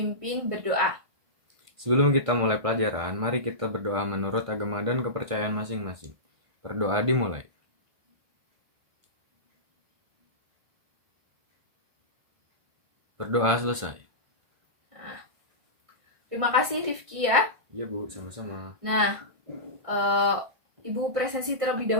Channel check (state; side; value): late; left; 1.5 ms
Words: berdoa. Sebelum kita mulai pelajaran, mari kita berdoa menurut agama dan kepercayaan masing-masing. Berdoa dimulai. Berdoa selesai. Nah, terima kasih Rifki ya. Iya, Bu, sama-sama. Nah, Ibu presensi terlebih